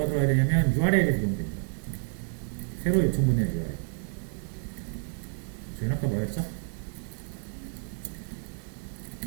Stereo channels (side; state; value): left; silent; 55 dB below the other